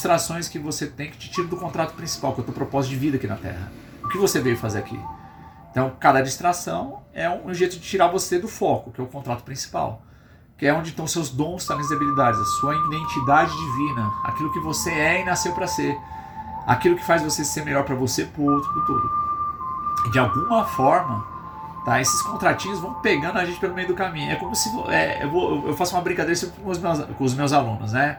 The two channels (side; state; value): both; identical; correlation 1.00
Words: que você tem que te tirar do contrato principal, que é o teu propósito de vida aqui na Terra. O que você veio fazer aqui? Então, cada distração é um jeito de tirar você do foco, que é o contrato principal. Que é onde estão seus dons, talentos e habilidades, a sua identidade divina, aquilo que você é e nasceu para ser, aquilo que faz você ser melhor para você, para o outro, para o todo. E de alguma forma, tá, esses contratinhos vão pegando a gente pelo meio do caminho. É como se eu faço uma brincadeira sempre com os meus alunos, né?